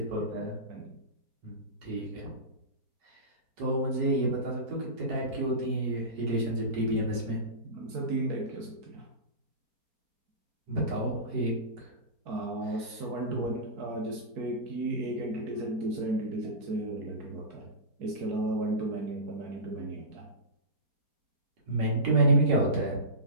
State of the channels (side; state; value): left; late; 4.3 ms